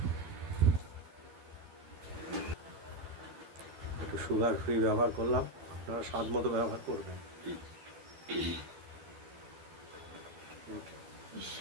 একটু সুগার ফ্রি ব্যবহার করলাম, আপনারা স্বাদ মতো ব্যবহার করবেন।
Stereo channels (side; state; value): left; late; 12 ms